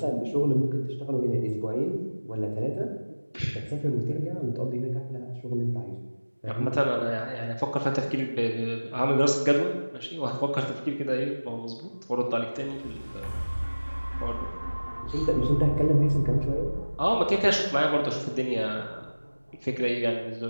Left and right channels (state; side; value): inverted; both; correlation -1.00